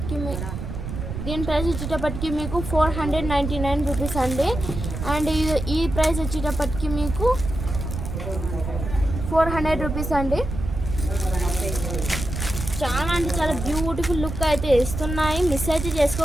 వచ్చేటప్పటికి మీకు 499 రూపీస్ అండి. అండ్ ఈ ప్రైస్ వచ్చేటప్పటికి మీకు 400 రూపీస్ అండి. చాలా అంటే చాలా బ్యూటిఫుల్ లుక్ అయితే ఇస్తున్నాయి. మిస్ అయితే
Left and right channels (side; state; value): right; noise; rumble, 6 dB below the sound